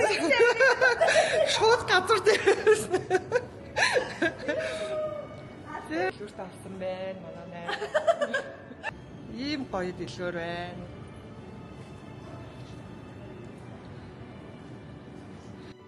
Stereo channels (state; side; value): identical; both; correlation 1.00